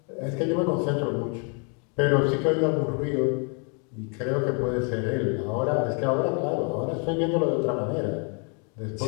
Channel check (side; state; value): right; quieter; 37.8 dB